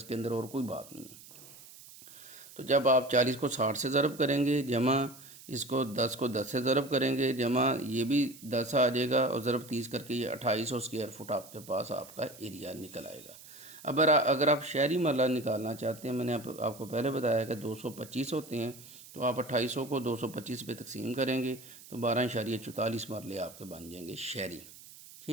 کے اندر، اور کوئی بات نہیں ہے۔ تو جب آپ 40 کو 60 سے ضرب کریں گے، جمع اس کو 10 کو 10 سے ضرب کریں گے، جمع یہ بھی 10 آ جائے گا، اور ضرب 30 کر کے یہ 2800 اسکوائر فٹ آپ کے پاس آپ کا ایریا نکل آئے گا۔ اگر آپ شہری مرلہ نکالنا چاہتے ہیں، میں نے آپ کو پہلے بتایا کہ 225 ہوتے ہیں، تو آپ 2800 کو 225 پہ تقسیم کریں گے تو 12.44 مرلے آپ کے بن جائیں گے شہری،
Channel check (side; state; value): right; noise; hiss, 19 dB below the sound